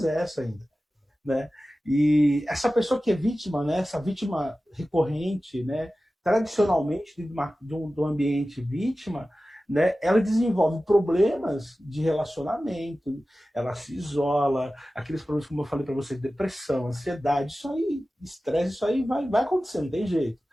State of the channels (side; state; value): both; normal; correlation 0.95